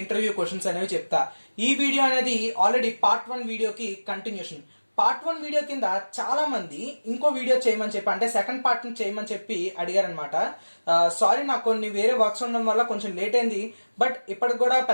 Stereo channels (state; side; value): inverted; both; correlation -1.00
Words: క్వశ్చన్స్ అనేవి చెప్తా. ఈ వీడియో అనేది ఆల్రెడీ పార్ట్ 1 వీడియోకి కంటిన్యూషన్. పార్ట్ 1 వీడియో కింద చాలా మంది ఇంకో వీడియో చేయమని చెప్పి, అంటే సెకండ్ పార్ట్ చేయమని చెప్పి అడిగారనమాట. సారీ, నాకు కొన్ని వేరే వర్క్స్ ఉండడం వల్ల కొంచెం లేట్ అయింది. బట్ ఇప్పటికి కూడా